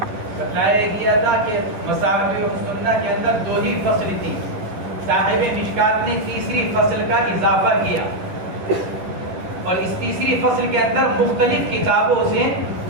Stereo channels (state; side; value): late; left; 11 ms